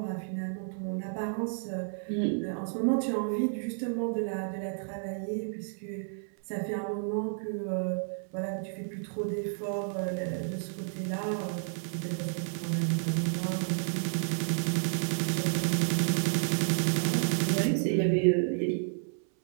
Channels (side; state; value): left; silent; 57 dB below the other